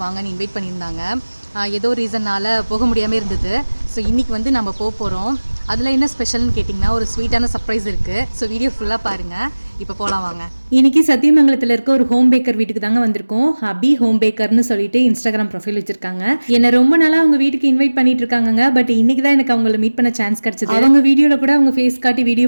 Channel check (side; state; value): both; inverted; correlation -1.00